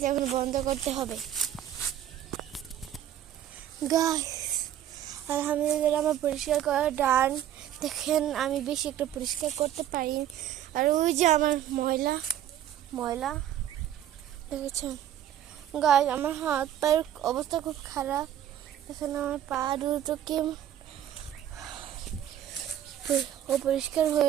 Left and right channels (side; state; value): left; quieter; 11.2 dB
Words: এখন বন্ধ করতে হবে। গাইস আলহামদুলিল্লাহ আমার পরিষ্কার করা ডান। দেখেন আমি বেশি একটা পরিষ্কার করতে পারি। আর ওই যে আমার ময়লা ময়লা দেখেছেন গাইস, আমার হাত পায়ের অবস্থা খুব খারাপ। এখানে আমার পা দুটোকে পরিষ্কার